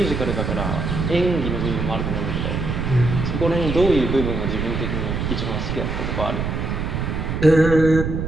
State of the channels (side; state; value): right; noise; rumble, 2 dB below the sound